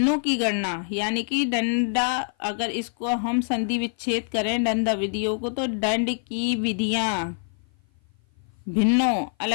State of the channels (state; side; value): silent; right; 55 dB below the other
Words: की गणना, यानी कि दंडा, अगर इसको हम संधि विच्छेद करें दंड विधियों को, तो दंड की विधियां भिन्नों